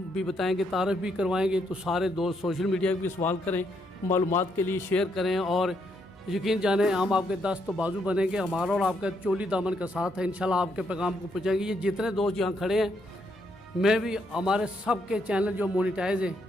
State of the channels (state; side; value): normal; both; correlation 0.76